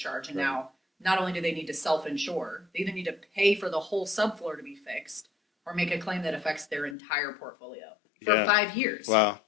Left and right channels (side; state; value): right; drops out; at 7.0 s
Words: And now not only do they need to self-insure, they either need to pay for the whole subfloor to be fixed or make a claim that affects their entire portfolio for 5 years. Wow.